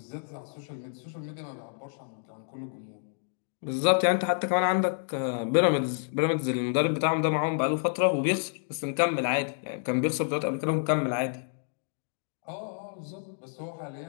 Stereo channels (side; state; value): right; silent; digital silence